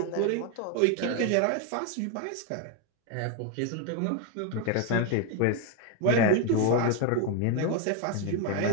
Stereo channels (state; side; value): different; both; correlation 0.01